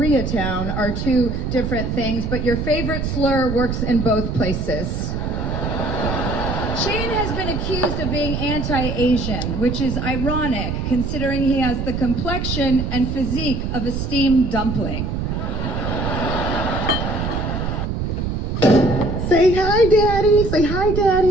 are two different things, but your favorite slur works in both places. Shane has been accused of being anti-Asian, which is ironic considering he has the complexion and physique of a steamed dumpling. Say hi, Daddy. Say hi,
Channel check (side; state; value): right; noise; rumble, 2 dB below the sound